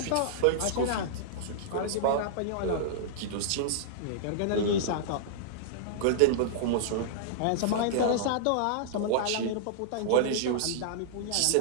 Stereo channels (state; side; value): different; both; correlation -0.02